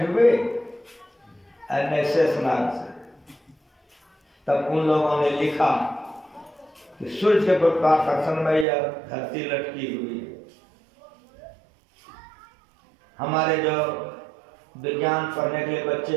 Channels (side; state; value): left; drops out; at 8.7 s